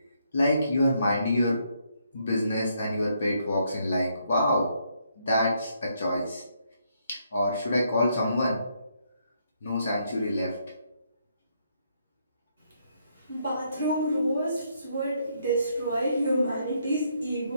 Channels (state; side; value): inverted; both; correlation -0.74